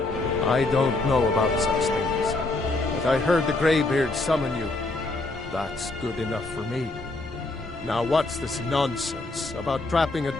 I don't know about such things, but I heard the Greybeard summon you. That's good enough for me. Now what's this nonsense about trapping a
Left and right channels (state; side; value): quieter; right; 3.0 dB